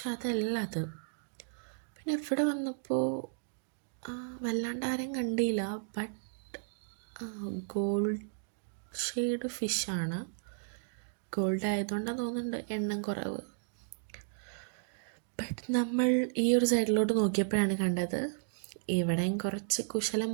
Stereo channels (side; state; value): left; silent; digital silence